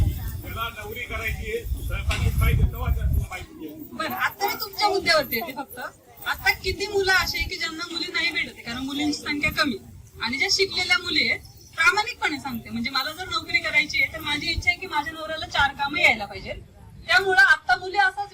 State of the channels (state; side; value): identical; both; correlation 1.00